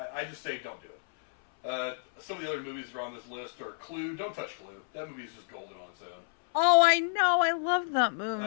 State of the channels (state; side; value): silent; right; 57 dB below the other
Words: just say don't do it. Some of the other movies that are on this list are Clue. Don't touch Clue. That movie is just golden on its own. Oh, I know. I love that